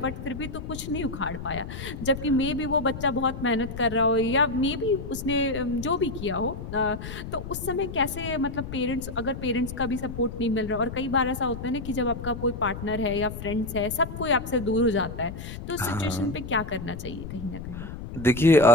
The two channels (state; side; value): noise; left; rumble, 9 dB below the sound